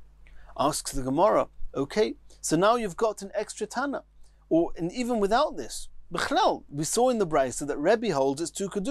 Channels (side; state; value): both; identical; correlation 1.00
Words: Asks the Gemara, okay, so now you've got an extra Tana. And even without this, B'chlal, we saw in the Braisa that Rebbe holds it's two